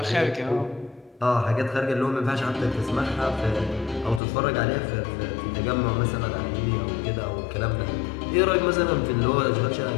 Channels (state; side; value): drops out; right; at 4.2 s